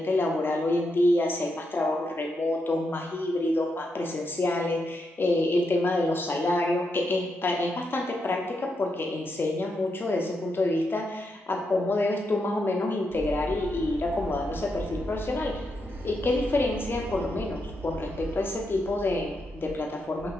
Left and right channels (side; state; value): both; normal; correlation 0.83